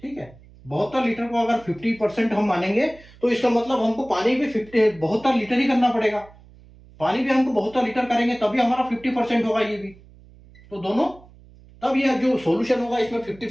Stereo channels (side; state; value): right; noise; hum, 24 dB below the sound